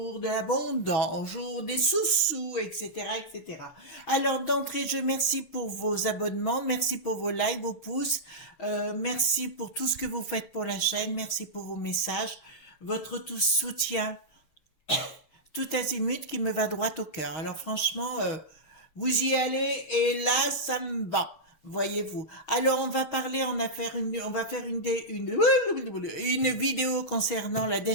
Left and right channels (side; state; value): right; late; 6.3 ms